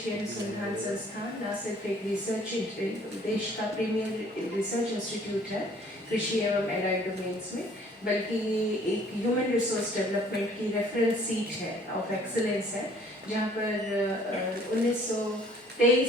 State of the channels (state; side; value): normal; both; correlation 0.56